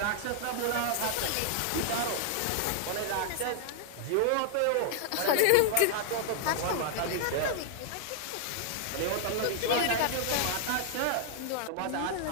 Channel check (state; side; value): different; both; correlation 0.00